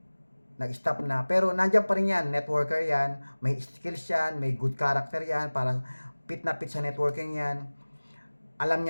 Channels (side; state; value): both; inverted; correlation -1.00